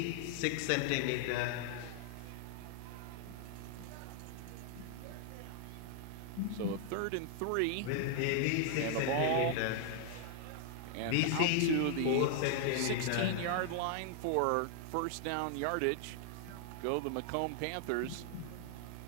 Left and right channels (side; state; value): both; different; correlation 0.00